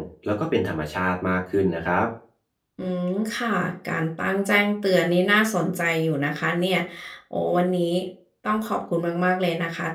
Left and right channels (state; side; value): identical; both; correlation 1.00